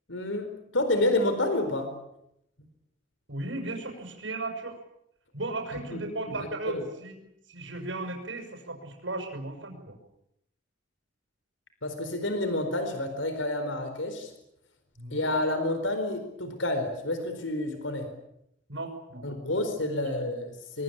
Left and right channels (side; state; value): both; normal; correlation -0.14